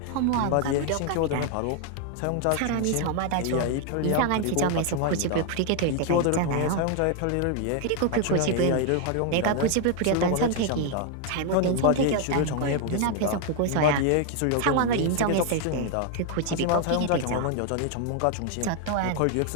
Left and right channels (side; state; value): both; different; correlation 0.01